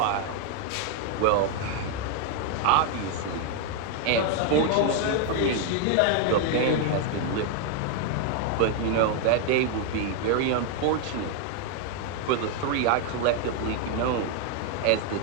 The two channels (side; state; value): both; different; correlation 0.00